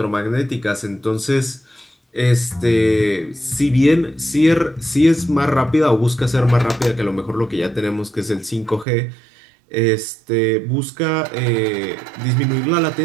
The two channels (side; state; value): left; drops out; at 8.8 s